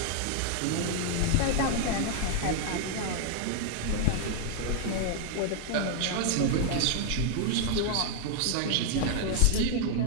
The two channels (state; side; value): different; both; correlation 0.00